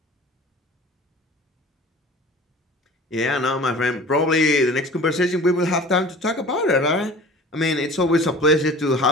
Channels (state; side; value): normal; both; correlation 0.42